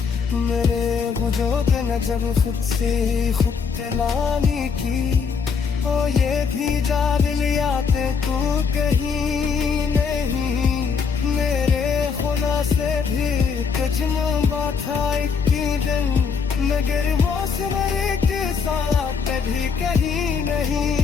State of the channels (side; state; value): right; quieter; 5.7 dB